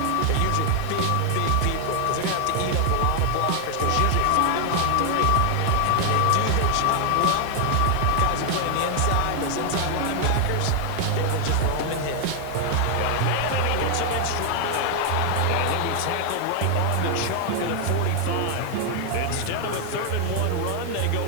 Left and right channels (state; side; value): different; both; correlation 0.00